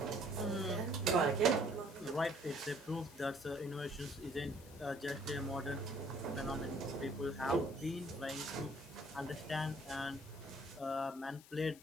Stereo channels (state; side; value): noise; left; hiss, 21 dB below the sound